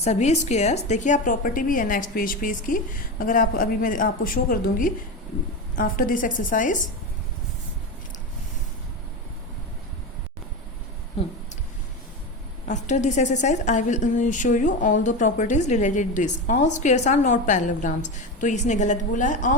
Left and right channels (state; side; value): normal; both; correlation 0.20